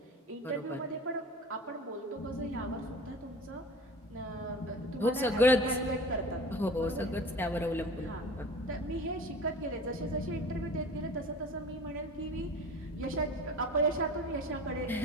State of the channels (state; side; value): normal; both; correlation 0.38